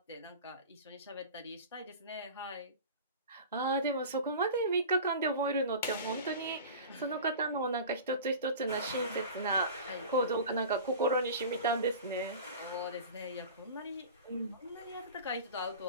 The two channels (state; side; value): inverted; both; correlation -0.35